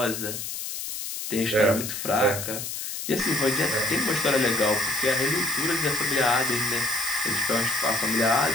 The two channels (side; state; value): left; noise; hiss, 6 dB below the sound